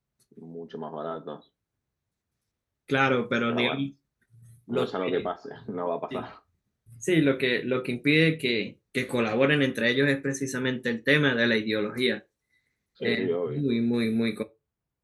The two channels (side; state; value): both; identical; correlation 1.00